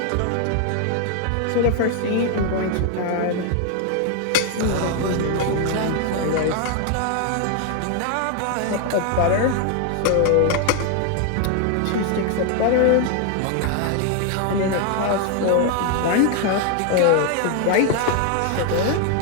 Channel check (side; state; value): both; different; correlation 0.00